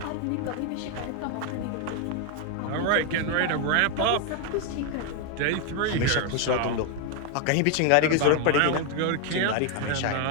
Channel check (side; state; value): both; different; correlation 0.00